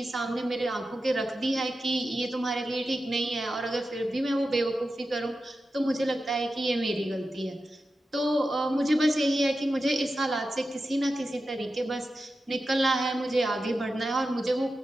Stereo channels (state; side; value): normal; both; correlation 0.91